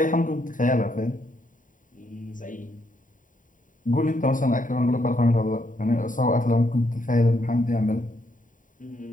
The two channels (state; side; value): late; right; 0.38 ms